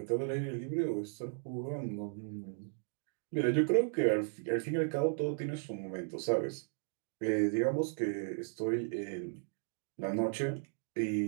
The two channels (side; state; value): left; silent; digital silence